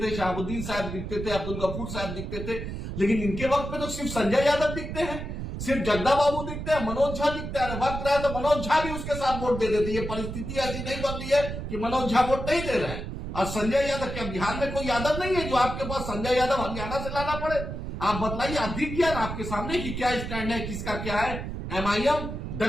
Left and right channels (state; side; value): noise; right; rumble, 6 dB below the sound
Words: थे, शहाबुद्दीन साहब दिखते थे, अब्दुल गफूर साहब दिखते थे, लेकिन इनके वक्त में तो सिर्फ संजय यादव दिखते हैं, सिर्फ जगदा बाबू दिखते हैं, मनोज झा दिखते हैं। वक्त रहा तो मनोज झा भी उसके साथ वोट दे देते। ये परिस्थिति ऐसी नहीं बन रही है कि मनोज झा वोट नहीं दे रहे हैं। और संजय यादव, क्या बिहार में कोई यादव नहीं है जो आपके पास संजय यादव हरियाणा से लाना पड़े? आप बताइए, आप दिख गया ना आपके सामने कि क्या स्टैंड है, किसका क्या है। एमआईएम